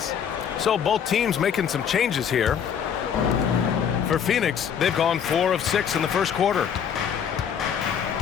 So both teams making some changes here. For Phoenix, they've gone 4 of 6 in the first quarter.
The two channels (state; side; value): quieter; right; 8.0 dB